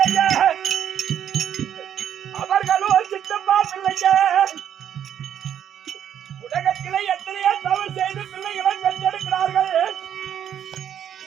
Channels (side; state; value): left; quieter; 9.6 dB